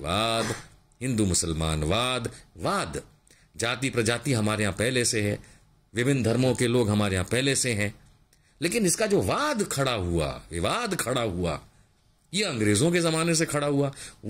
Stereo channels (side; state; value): both; identical; correlation 1.00